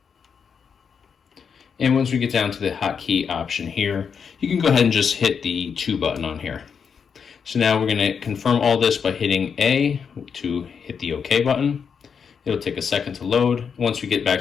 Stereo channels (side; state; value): right; quieter; 6.5 dB